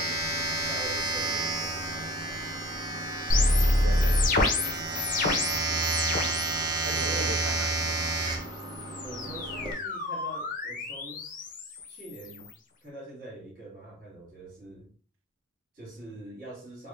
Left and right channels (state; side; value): normal; both; correlation 0.42